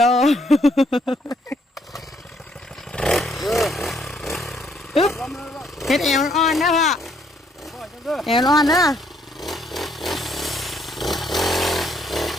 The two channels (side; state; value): both; normal; correlation 0.69